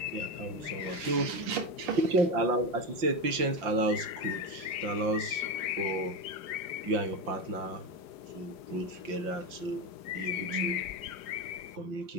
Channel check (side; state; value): left; late; 5.8 ms